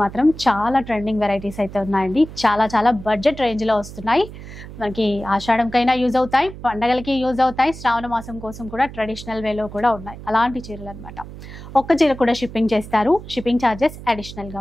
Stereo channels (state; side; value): noise; right; hum, 14 dB below the sound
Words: చాలా ట్రెండింగ్ వెరైటీస్ అయితే ఉన్నాయండి. చాలా బడ్జెట్ రేంజ్ లో వస్తున్నాయి. మనకి ఆషాఢంకైనా యూజ్ అవుతాయి, పండగలకి యూజ్ అవుతాయి, శ్రావణ మాసం కోసం కూడా ట్రెడిషనల్ వేలో కూడా ఉన్నాయి. అలాంటి చీరలు అనమాట. ఒక్క చీర కూడా షిప్పింగ్ చేస్తారు, షిప్పింగ్ ఛార్జెస్ అడిషనల్ గా